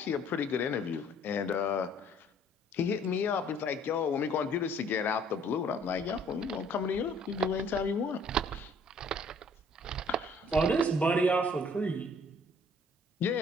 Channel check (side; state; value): both; normal; correlation 0.58